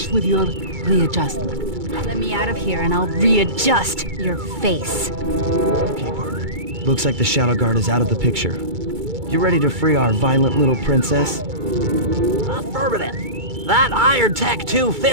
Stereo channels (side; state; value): left; late; 2.3 ms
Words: with your readjustment. Let me out of here and I'll readjust your face. Okay, partner. Looks like the Shadow Guard is out of the picture. You ready to free our violent little princess? Affirmative. That Iron Tech